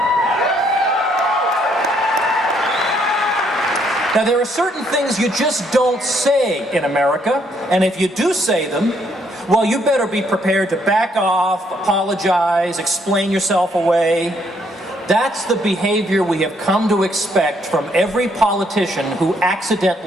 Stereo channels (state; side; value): normal; both; correlation 0.70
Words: Now, there are certain things you just don't say in America, and if you do say them, well, you better be prepared to back off, apologize, explain yourself away. That's the behavior we have come to expect from every politician who